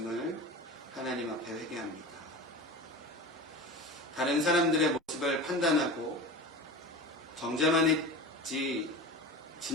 하나님 앞에 회개합니다. 다른 사람들의 모습을 판단하고 정죄만 했지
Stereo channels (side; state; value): both; normal; correlation 0.31